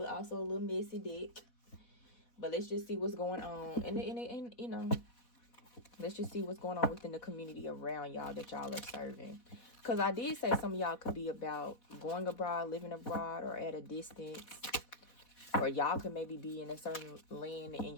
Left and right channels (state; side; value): late; right; 4.1 ms